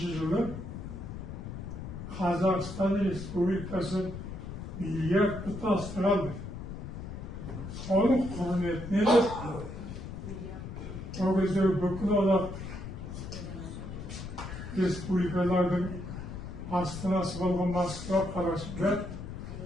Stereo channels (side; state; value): left; noise; rumble, 8 dB below the sound